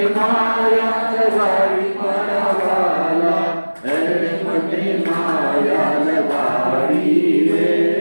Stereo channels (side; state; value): both; inverted; correlation -1.00